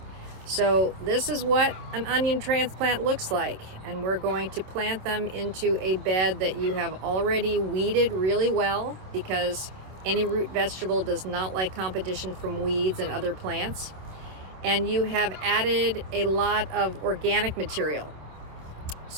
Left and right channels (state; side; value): late; left; 27 ms